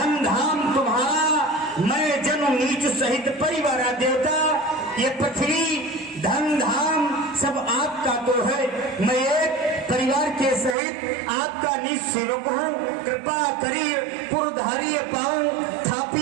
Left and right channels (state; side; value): drops out; left; at 10.8 s